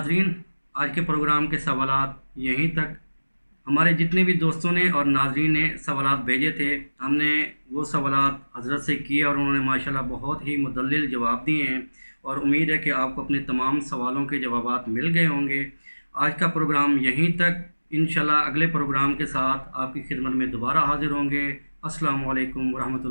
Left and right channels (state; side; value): inverted; both; correlation -1.00